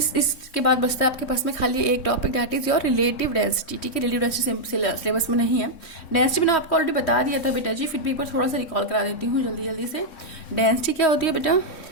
इसके बाद बचता है आपके पास में खाली एक topic that is your relative density, ठीक है, रिलेटिव डेंसिटी सिलेबस में नहीं है, डेंसिटी मैंने आपको ऑलरेडी बता दिया था बेटा जी, फिर भी एक बार थोड़ा सा रिकॉल करा देती हूँ जल्दी से। डेंसिटी क्या होती है बेटा,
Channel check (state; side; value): late; right; 3.7 ms